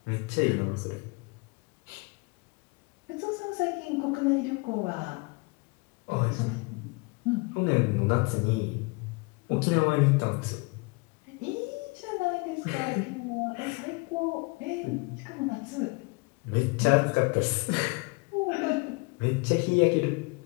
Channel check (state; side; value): quieter; right; 29.1 dB